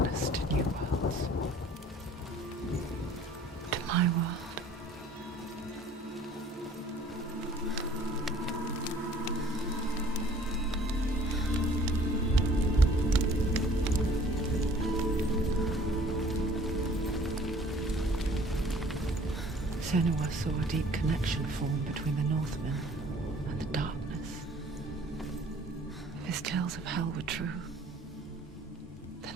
to new worlds. To my world. Senua saw a deep connection form between the Northmen and the darkness. If his tales of hell were true,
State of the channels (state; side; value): normal; both; correlation 0.53